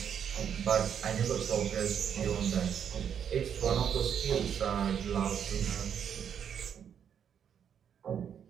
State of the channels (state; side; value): quieter; left; 8.3 dB